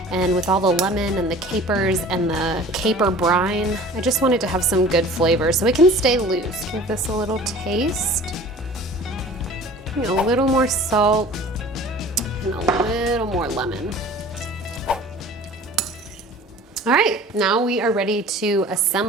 and with all the lemon and the capers and the caper brine, I just want it to have some good flavor so it can stay loose. Give this a little taste. A little more salt and a little more lemon. All right, now we are ready to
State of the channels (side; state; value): both; normal; correlation 0.44